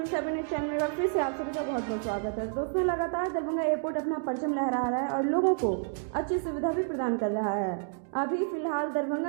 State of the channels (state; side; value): silent; left; digital silence